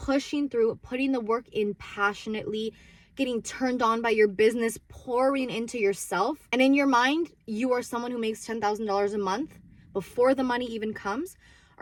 through, putting the work in passionately, getting turned on by your business, pouring into yourself. And in your mind, you are someone who makes $10,000 a month before the money even comes.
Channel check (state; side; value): identical; both; correlation 1.00